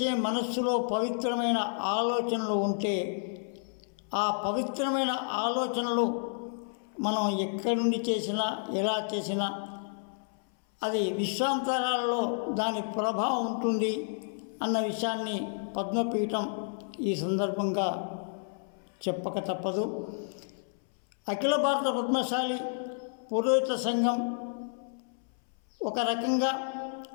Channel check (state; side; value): silent; right; 57 dB below the other